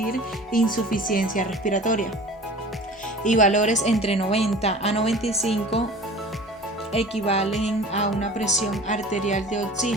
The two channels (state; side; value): normal; both; correlation 0.42